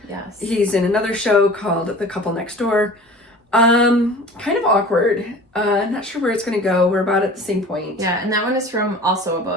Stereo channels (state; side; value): normal; both; correlation 0.42